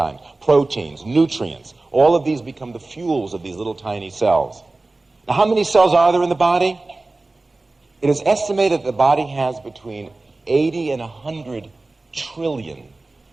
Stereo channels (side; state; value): left; quieter; 3.2 dB